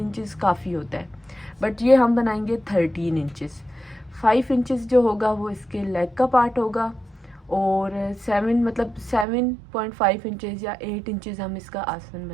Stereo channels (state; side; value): drops out; left; at 9.2 s